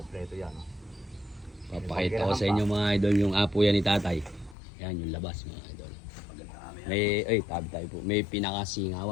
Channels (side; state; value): right; drops out; at 4.5 s